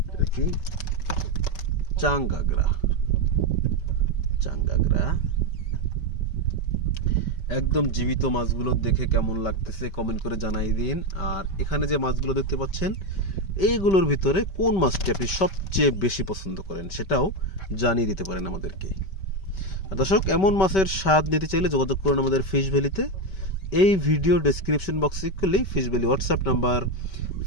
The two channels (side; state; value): right; late; 5.2 ms